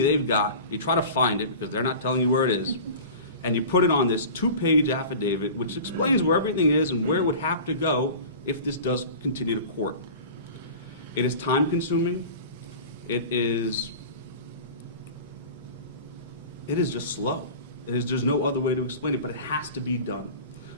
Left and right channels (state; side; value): inverted; both; correlation -0.37